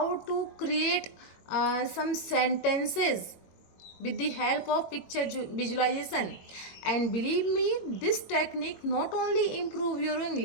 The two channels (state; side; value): late; right; 22 ms